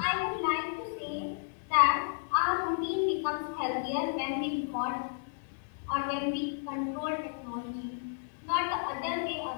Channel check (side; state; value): right; silent; digital silence